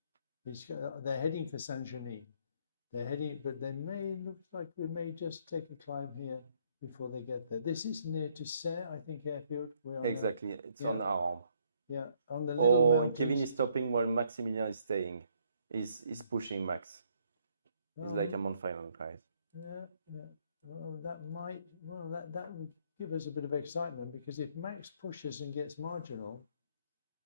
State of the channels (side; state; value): both; inverted; correlation -0.68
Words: They're heading for Saint-Genis. They're heading, but looks like we may just take a climb here before they get there. This is near to Serre, I think, airfield. Exactly, it's on Arambre. Yeah, on the little and Kevin is stopping while Maximilian is staying. He's pushing Max. He's like I'm on final glide. Yeah. Well, that would give us a bit of excitement, because if Max pushes and gets marginal,